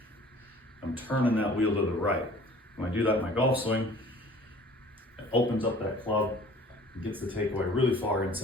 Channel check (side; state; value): both; normal; correlation 0.49